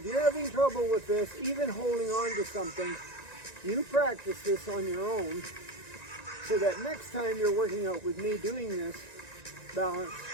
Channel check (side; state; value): right; late; 1.9 ms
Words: you're having trouble with this, even holding on to something, you practice this on your own so that next time you're working out with me doing this balance,